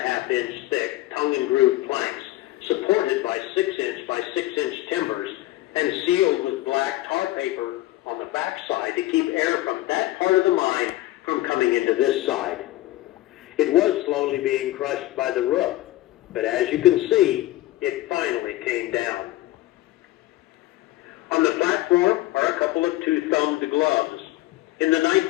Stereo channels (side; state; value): right; quieter; 16.7 dB